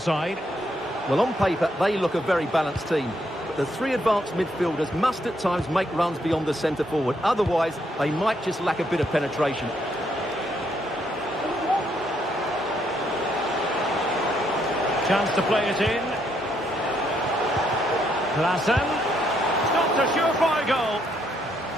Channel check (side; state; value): both; normal; correlation 0.74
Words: Well, on paper, they look a very balanced team. But the three advanced midfielders must at times make runs beyond the centre forward. Otherwise, they might just lack a bit of penetration. Chance to play it in. Klaassen. Stopped a surefire goal.